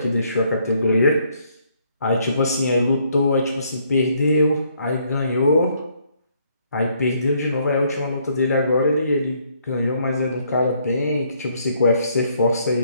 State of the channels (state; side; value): inverted; both; correlation -0.69